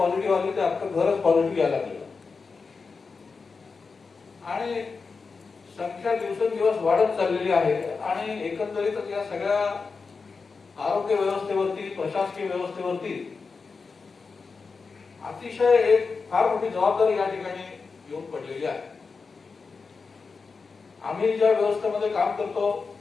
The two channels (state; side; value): quieter; right; 4.7 dB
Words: आली तर अख्खं घरच पॉझिटिव्ह यायला लागलं आणि संख्या दिवसेंदिवस वाढत चाललेली आहे. आणि एकंदरीतच या सगळ्या आरोग्य व्यवस्थेवरती, प्रशासकीय व्यवस्थेवरती अतिशय एक फार मोठी जबाबदारी या ठिकाणी येऊन पडलेली आहे. आम्ही ज्या व्यवस्थेमध्ये काम करतो